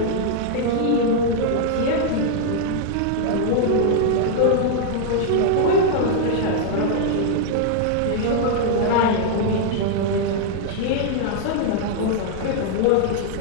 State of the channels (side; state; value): both; different; correlation -0.01